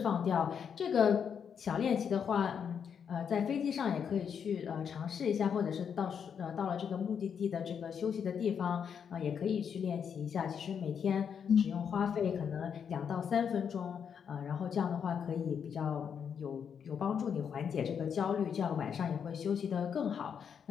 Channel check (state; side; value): quieter; right; 7.4 dB